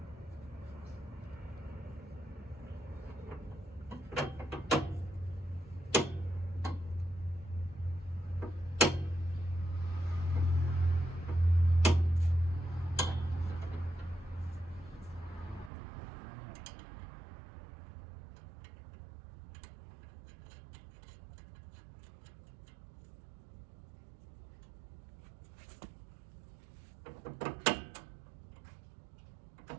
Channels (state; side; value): drops out; left; at 15.7 s